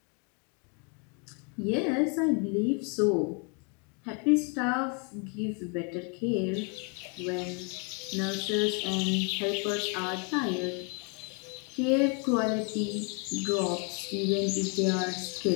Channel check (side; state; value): right; quieter; 34.4 dB